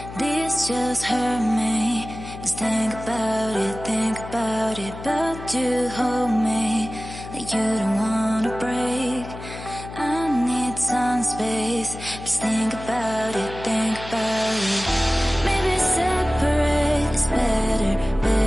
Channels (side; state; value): left; noise; hum, 12 dB below the sound